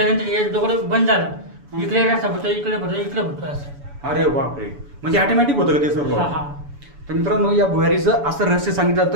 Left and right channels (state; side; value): late; left; 7.0 ms